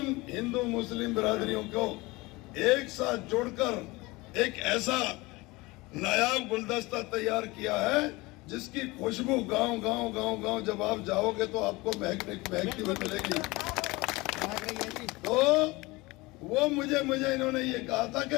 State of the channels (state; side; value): quieter; right; 22.5 dB